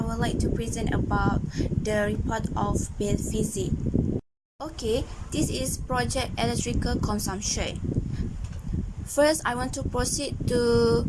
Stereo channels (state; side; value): identical; both; correlation 1.00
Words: would like to present about the report of Bill Fizi. Okay, this is project electrical consumption. First, I want to proceed to